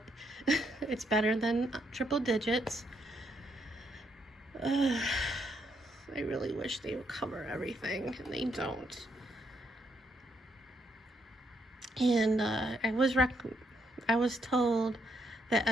it's better than triple digits. I really wish they would cover everything, and they don't. And I was told that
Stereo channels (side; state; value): both; normal; correlation 0.76